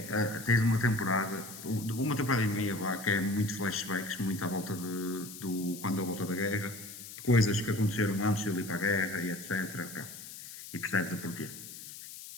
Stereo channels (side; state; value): left; noise; hiss, 13 dB below the sound